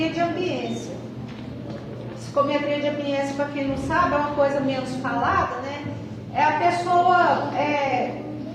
de ambiência. Psicometria de ambiência, para quem não sabe, é uma coisa menos falada, né? É a pessoa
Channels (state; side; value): identical; both; correlation 1.00